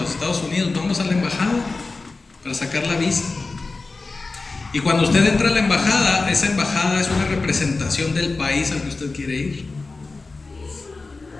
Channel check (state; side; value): quieter; right; 3.7 dB